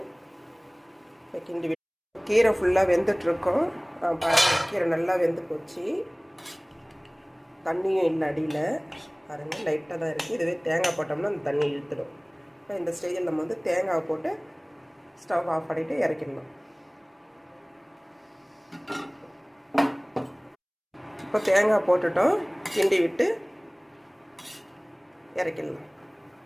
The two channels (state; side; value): identical; both; correlation 1.00